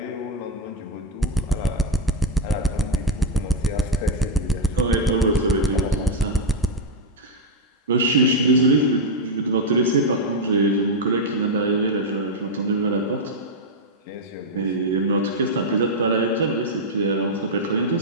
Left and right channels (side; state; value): both; normal; correlation 0.01